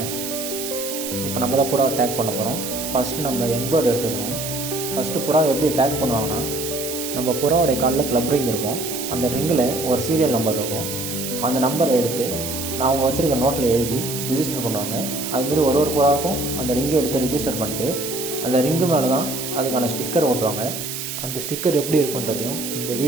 இப்போ நம்ம தான் புறாவை டேக் பண்ண போகிறோம். ஃபஸ்ட்டு நம்ம யங் பேர்டு எடுத்துக்கிறோம். ஃபஸ்ட்டு புறாவை எப்படி டேக் பண்ணுவாங்கன்னா, நம்ம புறாவோடைய காலில் க்ளப் ரிங் இருக்கும். அந்த ரிங்கில் ஒரு சீரியல் நம்பர் இருக்கும். அந்த நம்பரை எடுத்து நான் அவங்க வச்சுருக்க நோட்டில் எழுதி ரிஜிஸ்டர் பண்ணுவாங்க. அதுமாரி ஒரு புறாவுக்கும் அந்த ரிங்கை எடுத்து ரிஜிஸ்டர் பண்ணிட்டு அந்த ரிங்கு மேலே தான் அதுக்கான ஸ்டிக்கர் ஓட்டுவாங்க. அந்த ஸ்டிக்கர் எப்படி இருக்குன்றதையும் இந்த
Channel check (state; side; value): noise; right; hiss, 6 dB below the sound